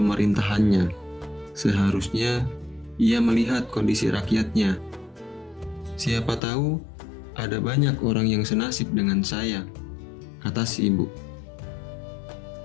Seharusnya ia melihat kondisi rakyatnya. Siapa tahu ada banyak orang yang senasib dengan saya," kata si ibu.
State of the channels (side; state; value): right; drops out; at 6.4 s